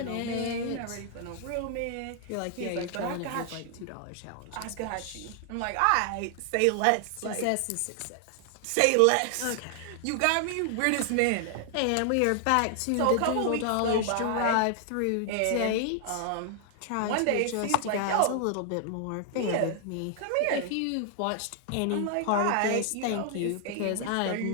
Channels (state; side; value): different; both; correlation 0.00